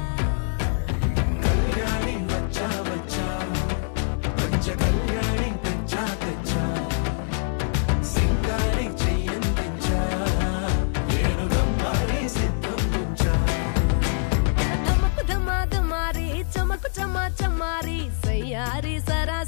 కళ్యాణి వచ్చా వచ్చా పంచ కళ్యాణి తెచ్చా తెచ్చా సింగారి చెయ్యందించా ఏడు గమ్మారి సిద్ధం ఉంచా ధమకు ధమా ధమారి చమకు చమా చమారి సయ్యారి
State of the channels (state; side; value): silent; right; 62 dB below the other